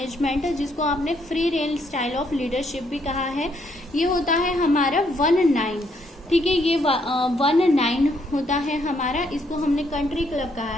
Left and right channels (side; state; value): both; normal; correlation 0.72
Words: जिसको आपने free range style of leadership भी कहा है। ये होता है हमारा 1-9, ठीक है, ये 1-9 होता है हमारा, इसको हमने कंट्री क्लब कहा